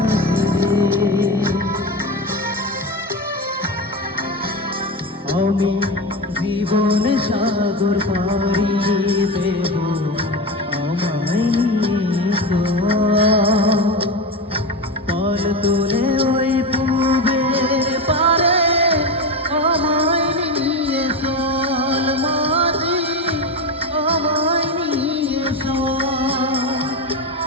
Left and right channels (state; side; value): normal; both; correlation 0.20